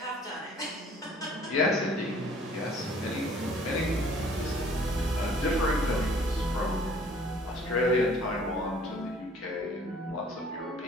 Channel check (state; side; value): normal; both; correlation 0.54